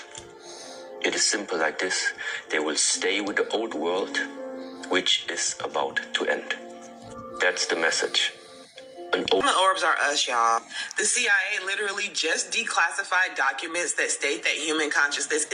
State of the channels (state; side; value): identical; both; correlation 1.00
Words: It is simple like this. They will stay with the old world, which is about to end. That's the message. The orbs are us, y'all. The CIA literally just declassified documents that state that human consciousness